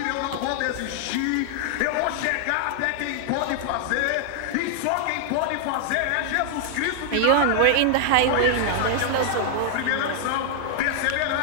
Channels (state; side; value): different; both; correlation -0.01